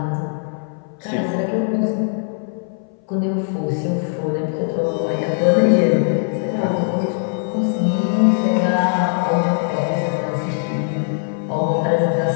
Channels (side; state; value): right; silent; 60 dB below the other